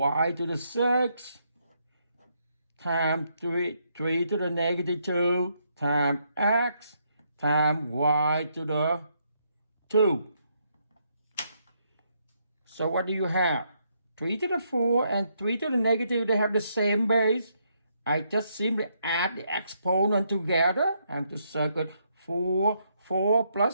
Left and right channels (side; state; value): both; inverted; correlation -0.76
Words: to the 6, times 3 to the negative 2, times x, times y to the 2. So what do you have? 3 to the 4 and 3 to the negative, they have the same base. I just simply add the exponent together and to circle 4